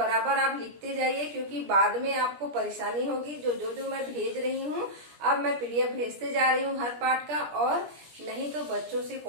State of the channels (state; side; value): late; left; 17 ms